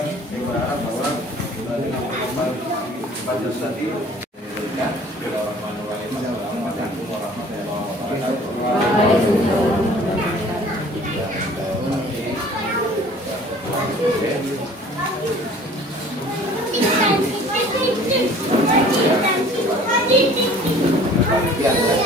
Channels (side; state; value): both; normal; correlation 0.50